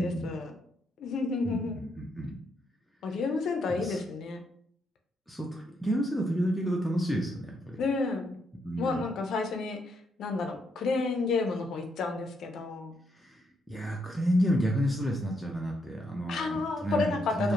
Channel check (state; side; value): normal; both; correlation 0.77